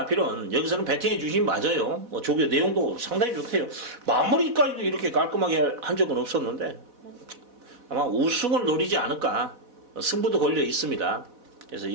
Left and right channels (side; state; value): left; late; 4.1 ms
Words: 여기서는 배팅해 주시면 맞아요. 조교 내용도 상당히 좋대요. 마무리까지도 이렇게 깔끔하게 한 적은 없었는데 아마 우승을 노리지 않을까. 승부도 걸려 있습니다. 그래서